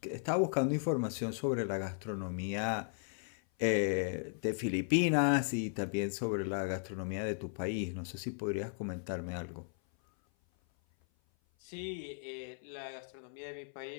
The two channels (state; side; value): silent; right; 54 dB below the other